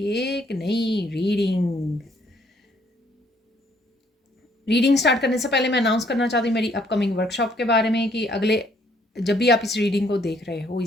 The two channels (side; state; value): both; normal; correlation 0.66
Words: एक नई रीडिंग स्टार्ट करने से पहले मैं अनाउंस करना चाहती हूँ मेरी अपकमिंग वर्कशॉप के बारे में कि अगले जब भी आप इस रीडिंग को देख रहे हो